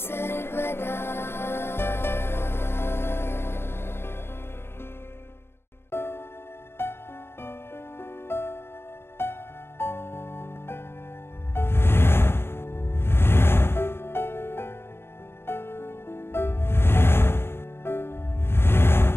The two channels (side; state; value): right; late; 0.11 ms